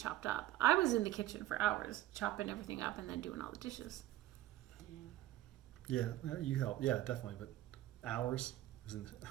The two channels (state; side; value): quieter; left; 15.0 dB